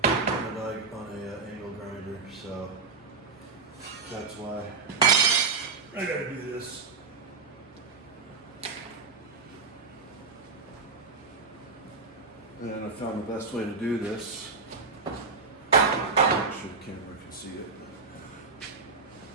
on an angle grinder, so that's why I gotta do this. And I found the best way to do this. Make sure the camera can see it.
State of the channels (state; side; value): quieter; left; 4.6 dB